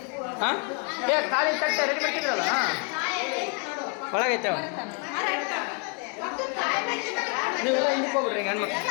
ಖಾಲಿ ತಟ್ಟೆ ರೆಡಿ ಮಾಡ್ತಿದ್ರಲ್ಲ ಒಳಗೈತೆ ನೀವೆಲ್ಲ ಹಿಂದಕ್ಕೆ ಹೋಗ್ಬಿಡ್ರಿ ಈಗ ಹೆಣ್ಮಕ್ಳು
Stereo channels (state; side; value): quieter; right; 36.7 dB